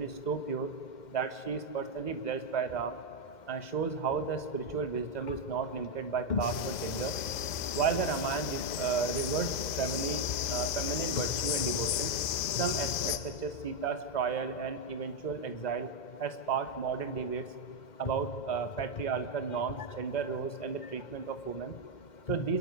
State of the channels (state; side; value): late; right; 2.0 ms